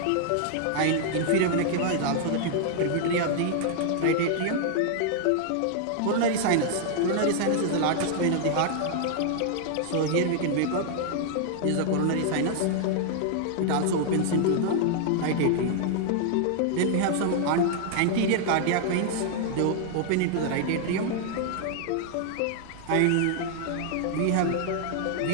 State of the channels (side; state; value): both; different; correlation -0.01